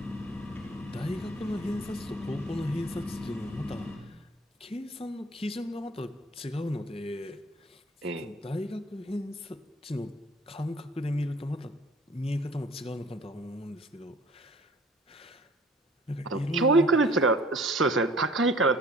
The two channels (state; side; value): normal; both; correlation 0.51